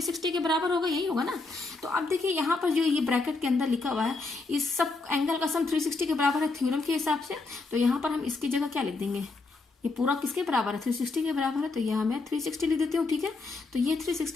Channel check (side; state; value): right; quieter; 3.6 dB